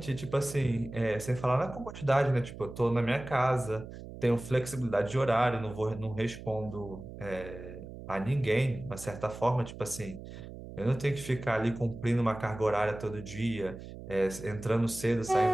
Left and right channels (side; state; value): right; noise; hum, 13 dB below the sound